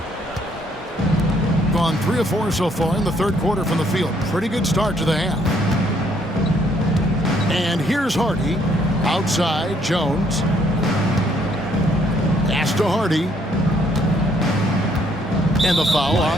Gone 3 of 4 so far in the third quarter from the field. Pretty good start to the half. And here's Hardy. Outside, Jones. Pass to Hardy. And the foul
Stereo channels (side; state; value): both; normal; correlation 0.67